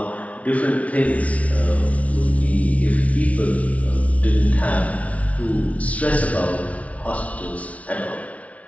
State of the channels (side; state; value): right; late; 0.066 ms